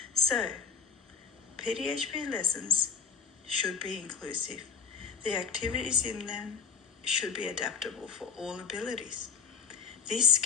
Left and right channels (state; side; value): quieter; right; 6.0 dB